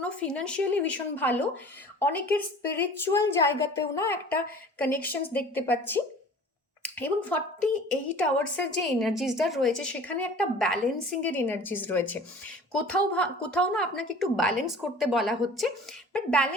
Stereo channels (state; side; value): normal; both; correlation 0.44